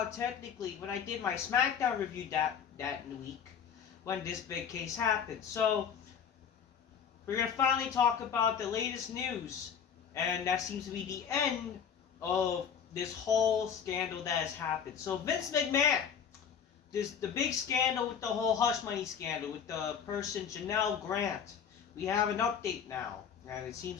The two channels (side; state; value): right; quieter; 7.5 dB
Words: technically when I did my SmackDown review that week when this big case happened. So, we're going to finally talk about the latest news. And that seems to be the end of this whole scandal that has happened. So, Vince McMahon. The big scandal with the whole hush money scandal with the person Janelle Grant. We have an update now, and it